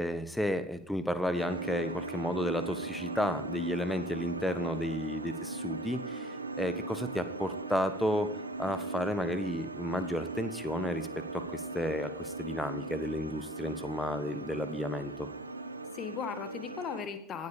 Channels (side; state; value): both; normal; correlation 0.55